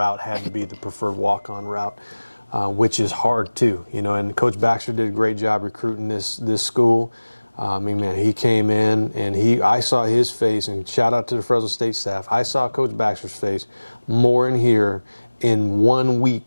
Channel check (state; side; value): inverted; both; correlation -1.00